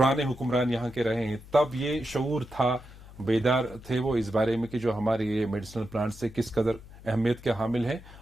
حکمران یہاں کے رہے ہیں, تب یہ شعور تھا, بیدار تھے وہ اس بارے میں کہ جو ہمارے یہ میڈیسنل پلانٹ سے کس قدر اہمیت کے حامل ہیں,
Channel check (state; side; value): noise; left; hum, 19 dB below the sound